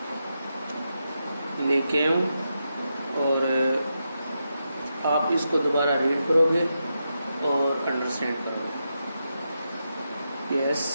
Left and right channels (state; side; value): inverted; both; correlation -0.86